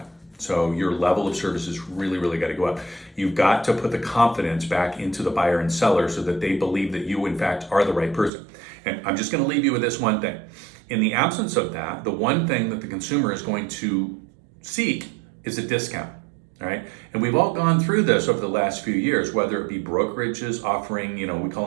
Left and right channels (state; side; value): drops out; left; at 8.3 s